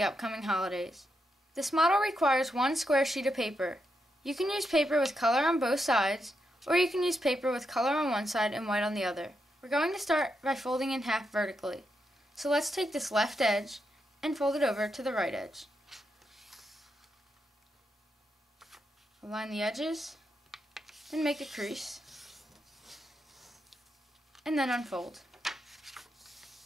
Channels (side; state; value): both; normal; correlation 0.83